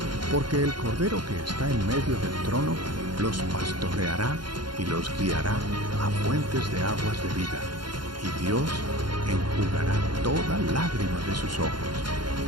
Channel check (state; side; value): late; left; 0.72 ms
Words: Porque el Cordero que está en medio del trono los pastoreará y los guiará a fuentes de aguas de vida, y Dios enjugará toda lágrima de sus ojos.